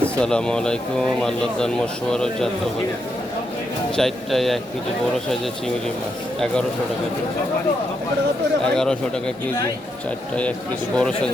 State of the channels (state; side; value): normal; both; correlation 0.81